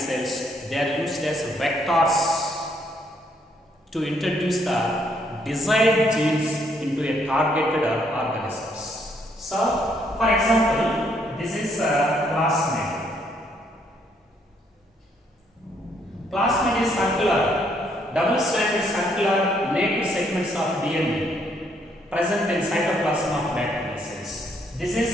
they are used as vectors to introduce the desired genes into a targeted organisms. So, for example, this is a plasmid. Plasmid is circular, double-stranded circular naked segments of DNA present in cytoplasm of bacterial cells. This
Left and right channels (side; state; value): both; normal; correlation 0.70